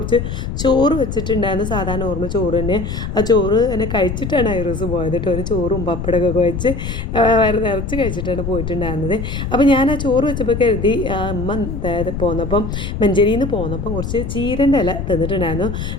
ചോറ് വെച്ചിട്ടുണ്ടായിരുന്നു. സാധാരണ ഓർമ്മ ചോറ് തന്നെ. ആ ചോറ് തന്നെ കഴിച്ചിട്ടാണ് ഐറൂസ് പോയത് കേട്ടോ. ഒരു ചോറും പപ്പടമൊക്കെ വെച്ച് വയറ് നിറച്ച് കഴിച്ചിട്ടാണ് പോയിട്ടുണ്ടായിരുന്നത്. അപ്പോൾ ഞാൻ ആ ചോറ് വെച്ചപ്പോൾ കരുതി അമ്മ പോന്നപ്പം മഞ്ചേരിയിൽ നിന്ന് പോന്നപ്പം കുറച്ച് ചീരൻ്റെ ഇല തന്നിട്ടുണ്ടായിരുന്നു.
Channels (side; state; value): left; noise; rumble, 5 dB below the sound